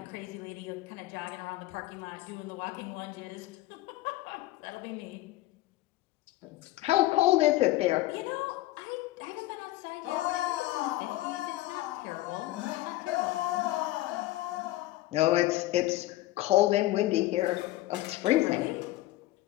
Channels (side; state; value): right; quieter; 17.0 dB